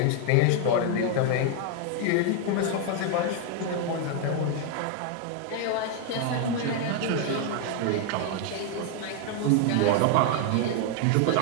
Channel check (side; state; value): both; different; correlation 0.01